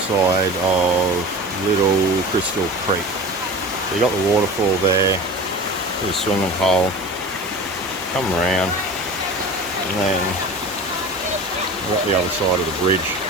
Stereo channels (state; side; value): normal; both; correlation 0.36